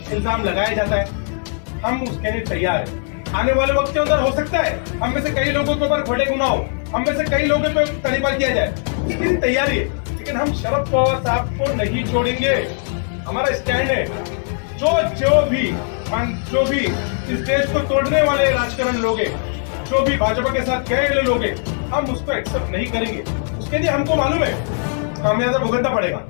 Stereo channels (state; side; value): silent; right; 59 dB below the other